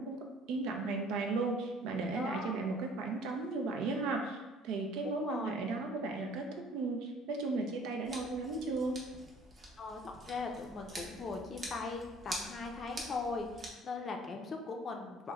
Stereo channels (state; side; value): normal; both; correlation 0.53